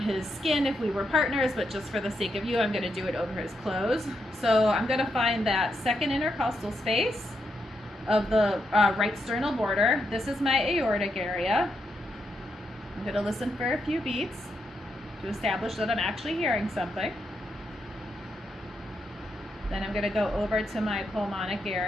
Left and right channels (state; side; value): normal; both; correlation 0.82